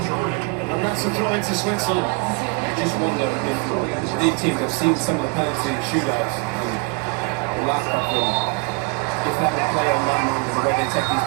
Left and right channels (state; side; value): quieter; left; 30.7 dB